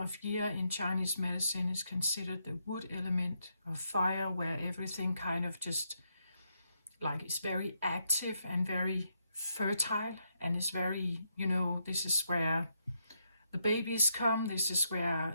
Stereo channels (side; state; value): both; inverted; correlation -0.79